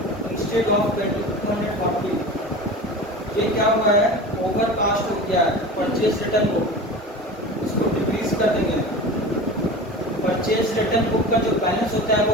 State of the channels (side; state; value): both; normal; correlation 0.33